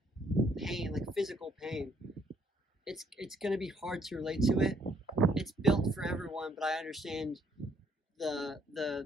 pain, like physical pain, it's gonna be hard to relate to it. It's built for everyone, but I understand the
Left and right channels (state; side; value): normal; both; correlation 0.68